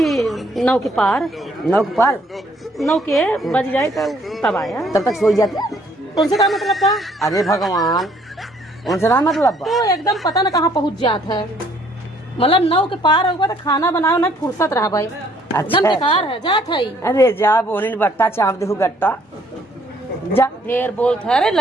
9 के पार 9 के पार 9 के बज जाए तो तब आया। तब तक सो जाते। उनसे क्या मतलब था? अरे भगवान उनसे ना मतलब तो एकदम पता न कहाँ पहुँच जाता है मतलब 9 के पार होगा तो खाना बनाओ ना फुर्सत रहा भाई एकदम बेकार है जात है। अरे जा बोनी बट्टा चाप दे गट्टा जा ढेर बोलते है। अरे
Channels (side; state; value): both; normal; correlation 0.64